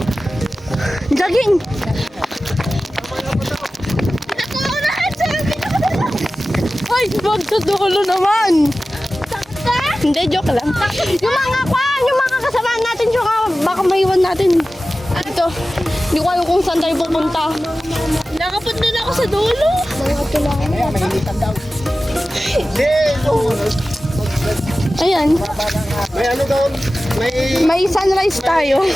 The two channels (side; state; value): both; normal; correlation 0.95